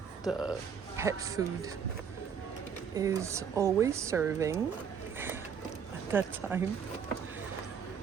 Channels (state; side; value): quieter; left; 7.1 dB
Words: the pet food is always serving at that time.